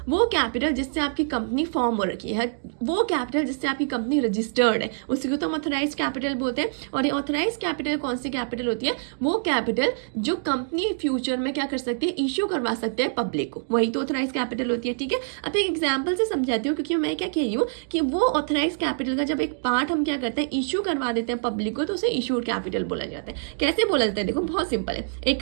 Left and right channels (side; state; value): left; silent; digital silence